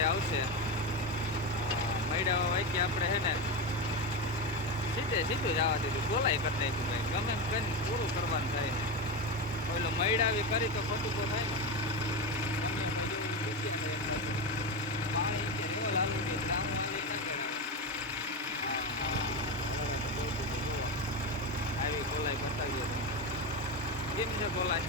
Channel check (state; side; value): normal; both; correlation 0.17